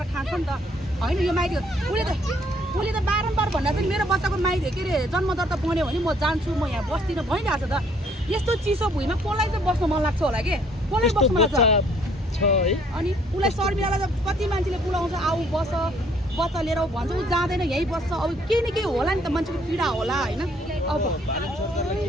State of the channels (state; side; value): normal; both; correlation 0.63